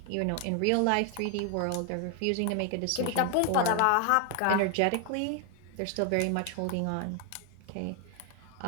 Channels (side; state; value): both; different; correlation 0.01